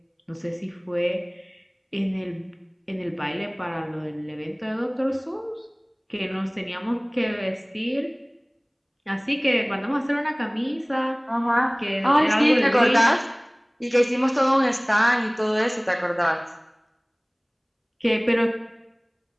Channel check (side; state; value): both; identical; correlation 1.00